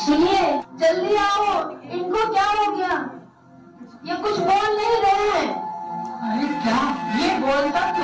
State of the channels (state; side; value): identical; both; correlation 1.00